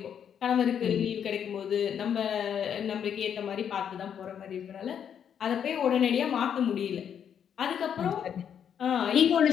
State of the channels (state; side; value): quieter; right; 8.4 dB